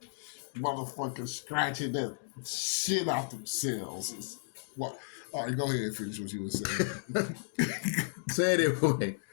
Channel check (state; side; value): silent; right; digital silence